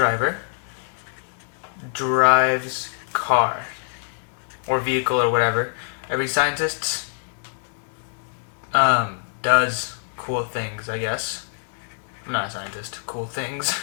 drives car or vehicle or whatever. Every scientist does cool things, I guess. I'm not a scientist. Cool things.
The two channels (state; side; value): silent; right; digital silence